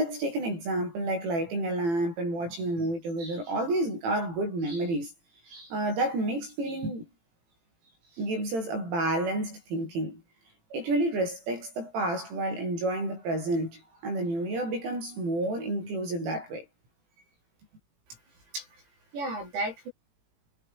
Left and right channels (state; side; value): late; left; 18 ms